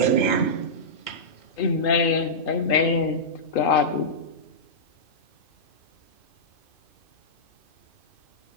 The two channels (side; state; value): right; late; 2.5 ms